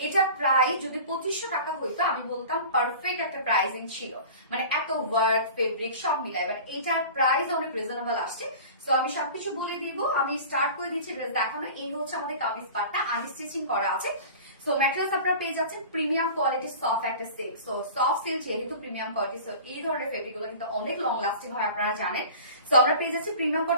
এটা প্রাইস যদি 2500 টাকা হইতো আমি বলতাম পারফেক্ট একটা প্রাইসিং ছিল, মানে এত ওয়ার্ক ফেব্রিক সব মিলাই, বাট এটার প্রাইস অনেক রিজনেবল আসছে। সো আমি সবকিছু বলে দিব, আমি স্টার্ট করে দিচ্ছি ড্রেস দেখানো। এই হচ্ছে আমাদের কামিজ পার্টটা, আনস্টিচিং করা আছে। সো ম্যাটেরিয়ালস আপনারা পেয়ে যাচ্ছেন প্রিমিয়াম কোয়ালিটি সফট একটা সিল্ক। সো সফট সিল্ক যেহেতু প্রিমিয়াম কোয়ালিটি, সো এই ধরনের ফেব্রিক গুলো কিন্তু অনেক লং লাস্টিং হয়, আপনারা জানেন। সো আমরা পেয়ে যাচ্ছি প্রিমিয়াম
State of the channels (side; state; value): both; inverted; correlation -0.39